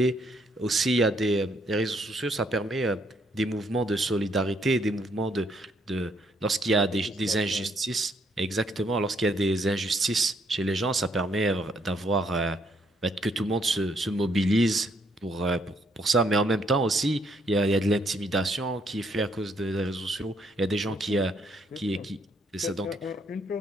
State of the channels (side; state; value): both; normal; correlation 0.71